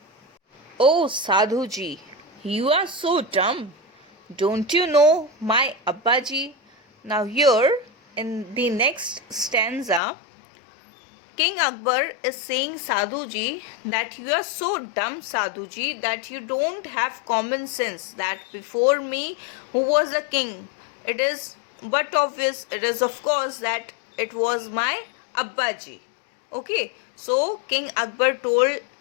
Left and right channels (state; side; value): drops out; right; at 10.0 s